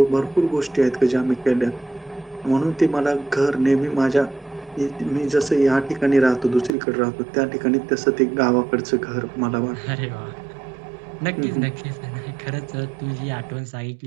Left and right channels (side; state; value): left; drops out; at 6.7 s